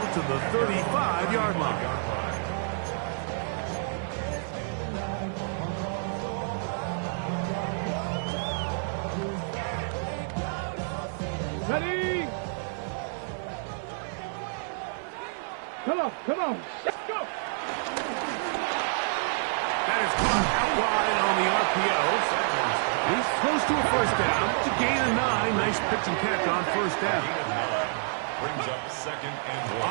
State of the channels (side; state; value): left; silent; 57 dB below the other